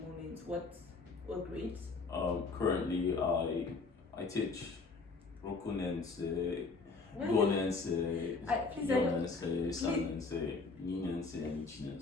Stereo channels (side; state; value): right; quieter; 4.1 dB